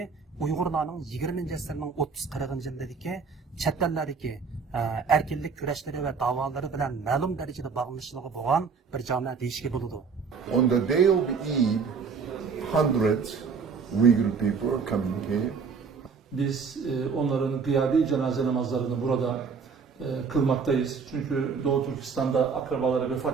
Uyg'urlarning 20-asrning 30-40 yillardagi chet ellardagi erkinlik kurashlari va da'volari bilan ma'lum darajada bog'liqligi bo'lgan bir jamia deyishga bo'ladi. On the day of Eid, hundreds Uyghur people are coming here. Biz onların gıyabi cenaze namazlarını burada kılmaktayız. Çünkü Doğu Türkistan'da akrabaları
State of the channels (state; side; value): quieter; left; 5.5 dB